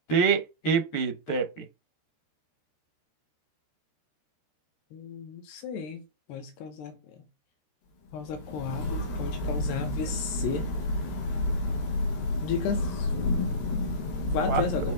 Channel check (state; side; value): late; right; 13 ms